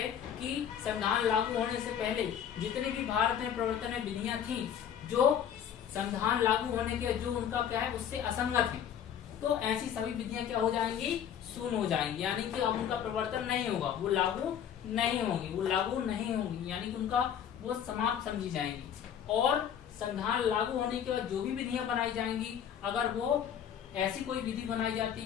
कि संविधान लागू होने से पहले जितने भी भारत में प्रवर्तन में विधियां थी जो संविधान लागू होने के जो उनका क्या है उससे असंगत है, तो ऐसी सभी विधियां क्या हो जाएंगी? शून्य हो जाएंगी। यानी कि अब उनका प्रवर्तन नहीं होगा, वो लागू नहीं होंगी, यानी कि उनका वो समाप्त समझी जाएंगी। और संविधान लागू होने के बाद जो भी विधियां बनाई जाएंगी, अगर वो ऐसी कोई विधि बनाई जाती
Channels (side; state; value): right; quieter; 9.0 dB